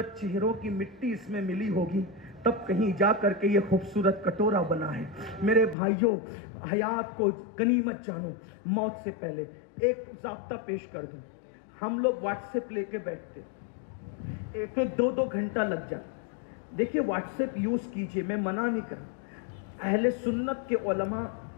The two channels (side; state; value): right; drops out; at 5.8 s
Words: چہروں کی مٹی اس میں ملی ہوگی تب کہیں جا کر کے یہ خوبصورت کٹورا بنا ہے۔ میرے بھائیوں، حیات کو غنیمت جانو۔ موت سے پہلے ایک ضابطہ پیش کر دوں، ہم لوگ واٹس ایپ لے کے بیٹھتے، ایک دو گھنٹہ لگ جاتا۔ دیکھیے واٹس ایپ یوز کیجئے، میں منع نہیں کر رہا۔ اہل سنت کے علماء